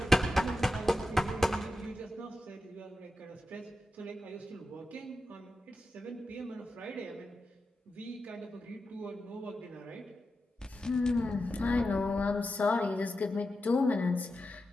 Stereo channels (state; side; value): normal; both; correlation 0.90